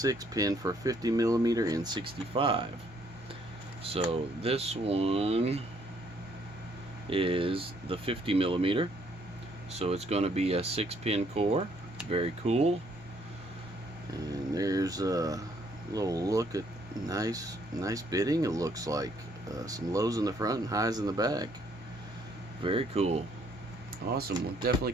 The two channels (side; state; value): both; normal; correlation 0.67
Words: for 50mm and 65. So this one is the 50mm, so it's going to be a 6-pin core. Very cool. And there's a little look at nice bitting. It looks like some lows in the front and highs in the back. Very cool. Awesome. We'll definitely